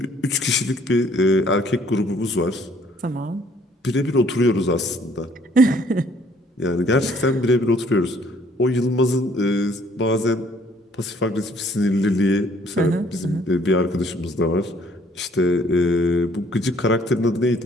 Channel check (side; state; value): both; normal; correlation 0.61